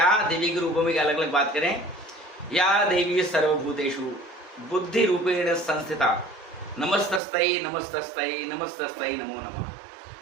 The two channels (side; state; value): left; drops out; at 7.2 s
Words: देवी के रूपों में अलग अलग बात करें। या देवी सर्वभूतेषु बुद्धि रूपेण संस्थिता नमस्तस्तै नमस्तस्तै नमस्तस्तै नमो